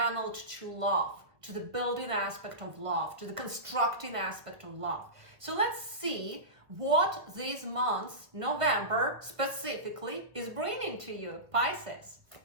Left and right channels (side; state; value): left; late; 1.3 ms